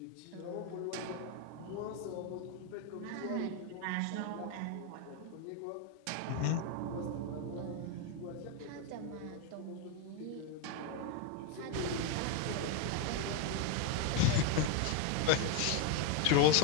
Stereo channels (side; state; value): both; different; correlation 0.02